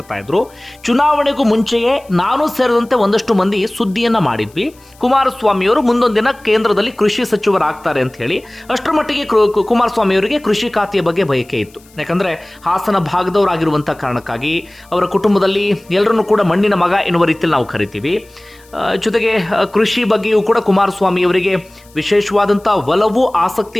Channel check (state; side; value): noise; left; hiss, 28 dB below the sound